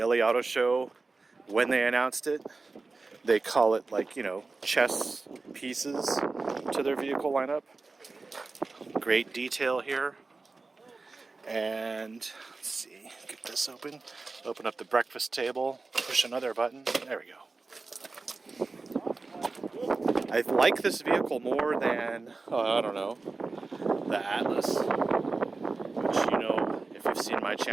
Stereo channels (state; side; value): quieter; left; 3.8 dB